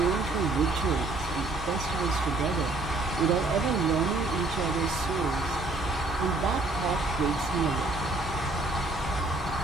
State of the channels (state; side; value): quieter; left; 3.2 dB